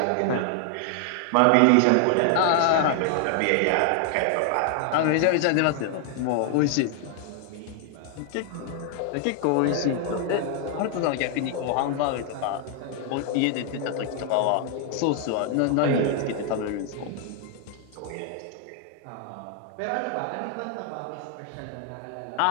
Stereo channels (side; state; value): both; different; correlation 0.00